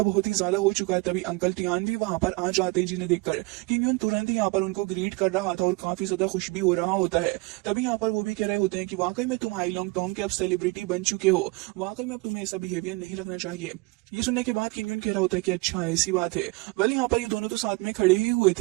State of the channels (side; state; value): left; quieter; 25.5 dB